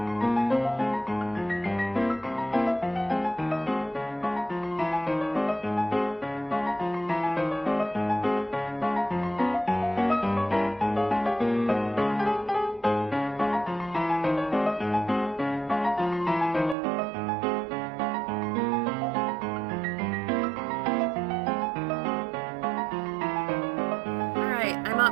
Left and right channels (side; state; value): left; drops out; at 16.8 s